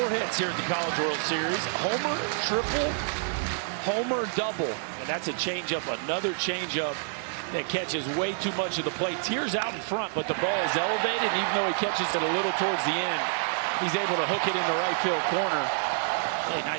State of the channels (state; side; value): silent; left; 56 dB below the other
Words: hits here at the College World Series. Homer, triple, homer, double. And that's a changeup, another changeup that catches way too much of the plate. Tears out in front, but the ball is elevated. And even though he catches it a little towards the end, he's able to hook it in the right field corner. Hey,